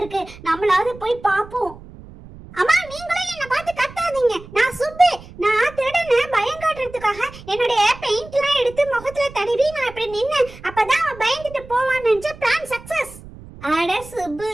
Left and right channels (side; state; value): right; noise; rumble, 18 dB below the sound